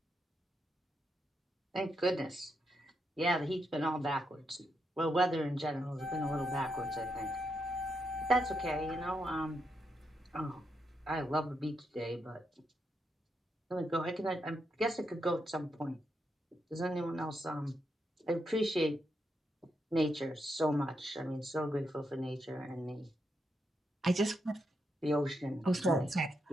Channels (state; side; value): normal; both; correlation 0.82